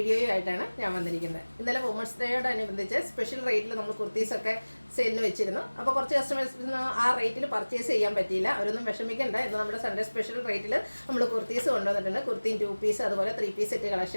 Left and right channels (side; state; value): both; inverted; correlation -1.00